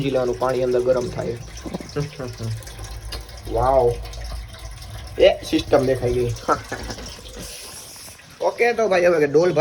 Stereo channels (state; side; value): identical; both; correlation 1.00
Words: લેવાનું પાણી અંદર ગરમ થાય વાવ એ સિસ્ટમ દેખાઈ ગઈ ઓકે તો ભાઈ હવે ડોલ